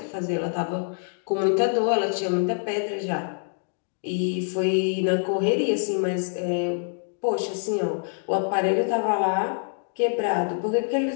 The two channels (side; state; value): right; silent; 61 dB below the other